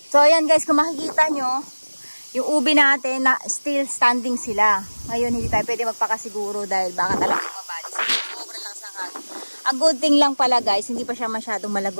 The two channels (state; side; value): inverted; both; correlation -1.00